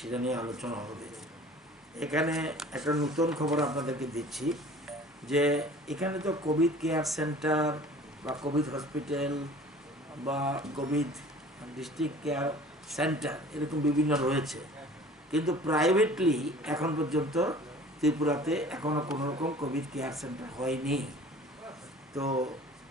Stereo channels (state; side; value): normal; both; correlation 0.46